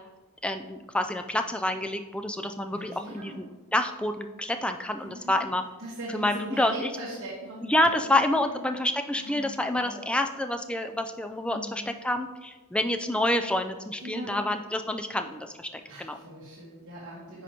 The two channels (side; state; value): both; normal; correlation 0.67